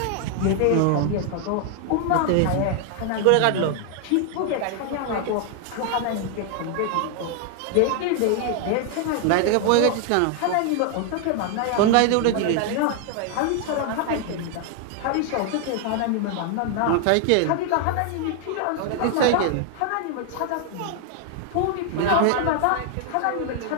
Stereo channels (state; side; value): different; both; correlation 0.00